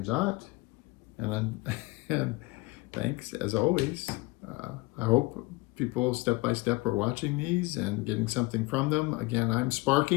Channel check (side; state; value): right; quieter; 23.6 dB